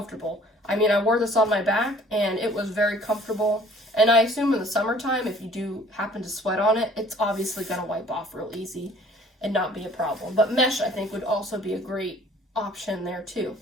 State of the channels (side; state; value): both; normal; correlation 0.54